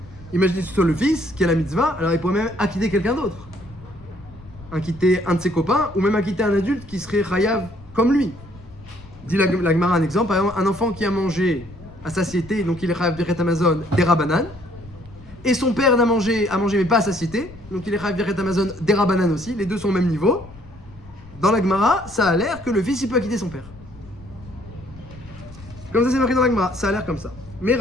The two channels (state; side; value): noise; left; rumble, 20 dB below the sound